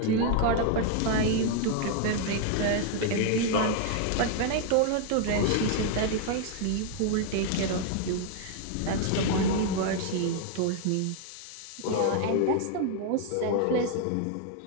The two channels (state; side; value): different; both; correlation 0.00